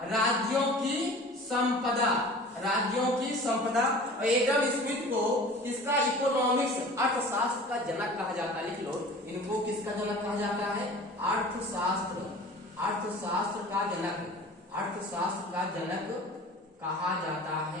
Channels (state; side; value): normal; both; correlation 0.42